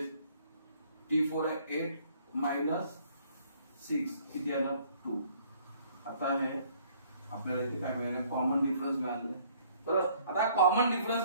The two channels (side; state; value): both; inverted; correlation -0.60